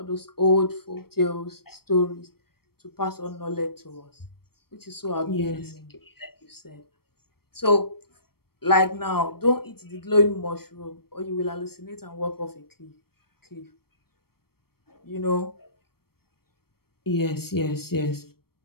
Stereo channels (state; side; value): late; right; 0.94 ms